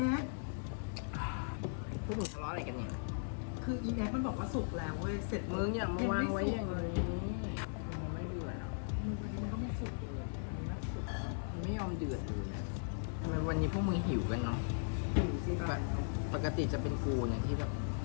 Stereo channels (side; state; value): right; silent; digital silence